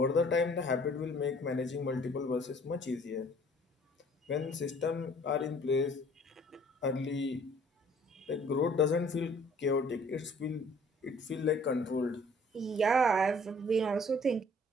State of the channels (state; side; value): normal; both; correlation 0.56